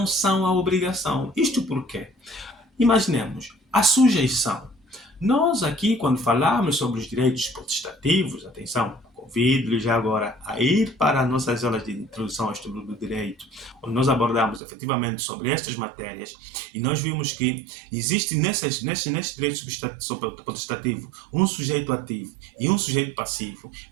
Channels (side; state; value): left; drops out; at 14.6 s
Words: são a obrigação. Isto por quê? Imaginemos, a sujeição. Nós aqui, quando falamos sobre os direitos potestativos, atenção, convido-lhes já agora a ir para as nossas aulas de introdução ao estudo do direito, onde nós abordamos efetivamente sobre estas matérias, e nós vimos que existe nesses direitos potestativos um sujeito ativo e um sujeito passivo.